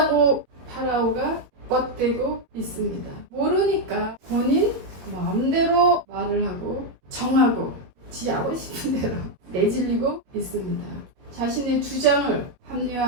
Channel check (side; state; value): left; late; 22 ms